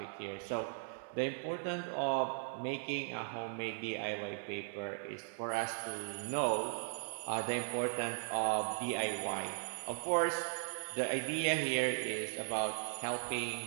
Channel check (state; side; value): silent; left; 52 dB below the other